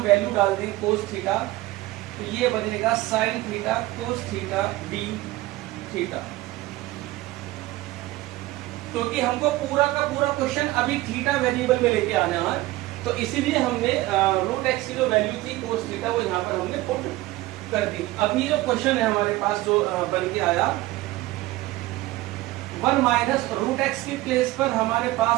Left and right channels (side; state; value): left; quieter; 18.2 dB